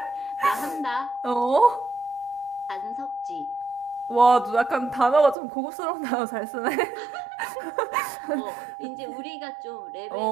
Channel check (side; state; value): left; drops out; at 5.4 s